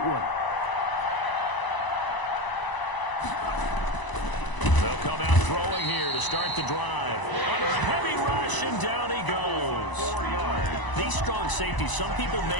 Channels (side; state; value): right; late; 1.0 ms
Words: one. They'll come out throwing here to start the drive. Under a heavy rush, and down he goes. 4 yards. These strong safeties, some people